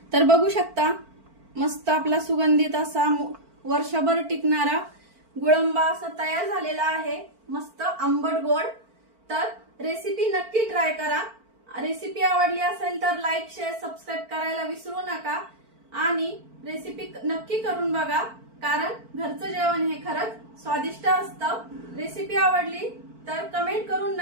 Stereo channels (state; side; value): late; left; 4.5 ms